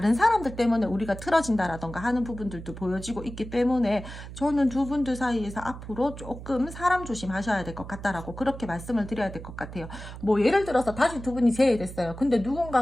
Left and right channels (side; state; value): right; noise; hum, 12 dB below the sound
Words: 사람들 때문에 우리가 틀어진다라던가 하는 부분들도 보여지고 있기 때문에 저는 두 분들 사이에서 앞으로 조금 사람 조심하셔야 될 것 같다라고 그렇게 말씀을 드려야 될 것 같아요. 뭐 예를 들어서 다시 두 분이 재회됐어요. 근데